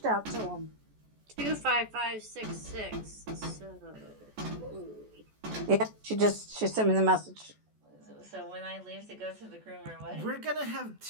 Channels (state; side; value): late; left; 14 ms